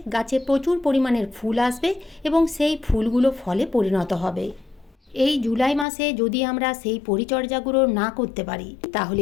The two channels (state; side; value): drops out; right; at 5.9 s